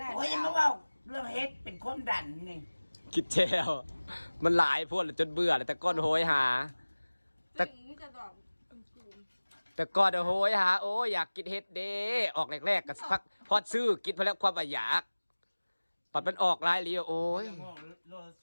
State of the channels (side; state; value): both; inverted; correlation -1.00